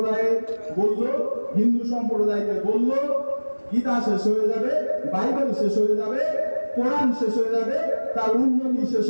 বলল, হিন্দু সম্প্রদায়কে বলল, গীতা শেষ হয়ে যাবে, বাইবেল শেষ হয়ে যাবে, কোরআন শেষ হয়ে যাবে, তার উন্নতি শেষ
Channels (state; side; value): inverted; both; correlation -1.00